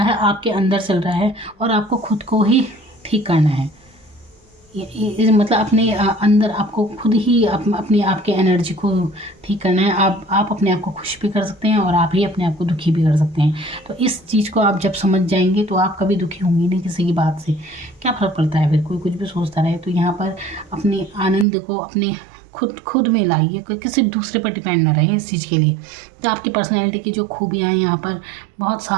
है आपके अंदर चल रहा है, और आपको खुद को ही ठीक करना है। मतलब अपने अंदर आपको खुद ही अपने आप के एनर्जी को ठीक करना है। आप अपने आप को खुश भी कर सकते हैं और आप ही अपने आप को दुखी भी कर सकते हैं। तो इस चीज़ को आप जब समझ जाएंगे तो आप कभी दुखी होंगे नहीं किसी की बात से। क्या फ़र्क पड़ता है, फिर कोई कुछ भी सोचता रहे। तो यहाँ पर अपने आनंद को अपने खुद में लाइए, कोई किसी दूसरे पर डिपेंड ना रहे इस चीज़ के लिए। तो आपकी पर्सनैलिटी की जो खूबियाँ हैं यहाँ पर, बहुत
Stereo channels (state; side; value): drops out; left; at 21.5 s